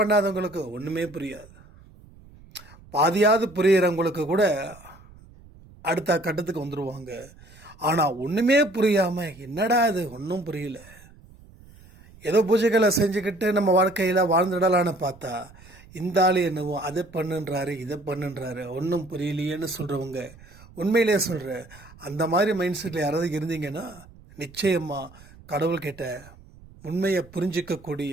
ஒன்றுமே புரியாது. பாதியாவது புரியிறவங்களுக்கு கூட அடுத்த கட்டத்துக்கு வந்துடுவாங்க. ஆனால் ஒன்றுமே புரியாமல் என்னடா இது ஒன்றும் புரியல, ஏதோ பூஜைகளை செஞ்சுக்கிட்டு நம்ம வாழ்க்கையில் வாழ்ந்துடலான்னு பார்த்தா இந்த ஆள் என்னவோ அதை பண்ணுன்றாரு இதை பண்ணுன்றாரு ஒன்றும் புரியலையேன்னு சொல்கிறவங்க, உண்மையிலேயே சொல்கிற அந்த மாதிரி மைண்ட் செட்டில் யாராவது இருந்தீங்கன்னா நிச்சயமாக கடவுள்கிட்ட உண்மையை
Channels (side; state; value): right; noise; rumble, 23 dB below the sound